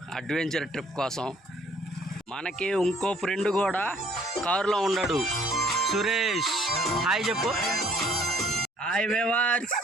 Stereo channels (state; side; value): normal; both; correlation 0.60